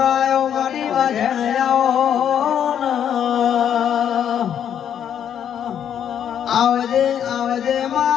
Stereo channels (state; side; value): quieter; right; 9.1 dB